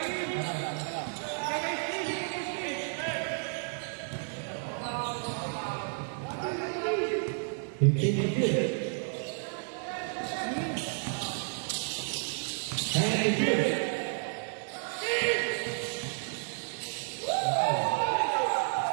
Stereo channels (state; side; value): silent; left; 57 dB below the other